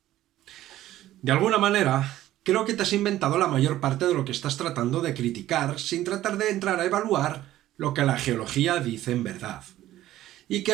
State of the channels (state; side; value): quieter; left; 14.1 dB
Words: De alguna manera, creo que te has inventado la mayor parte de lo que estás tratando de criticar sin tratar de entrar a evaluar lo que la geología dice en verdad. Y que